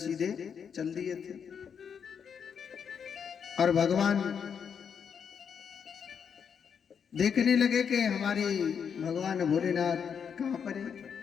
चल दिए थे और भगवान देखने लगे कि हमारे भगवान भोलेनाथ कहाँ पर है।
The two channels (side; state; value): right; quieter; 7.1 dB